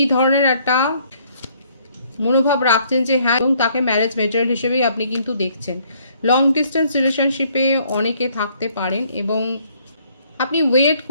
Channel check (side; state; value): both; inverted; correlation -0.64